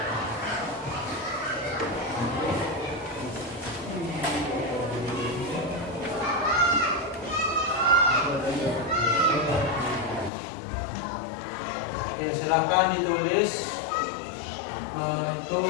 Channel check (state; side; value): drops out; right; at 10.3 s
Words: Oke, silakan ditulis itu